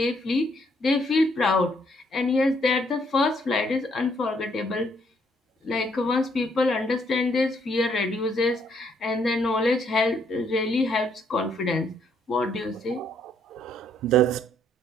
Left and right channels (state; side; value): normal; both; correlation 0.70